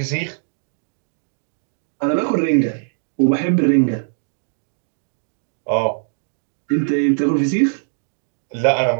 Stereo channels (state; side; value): silent; left; digital silence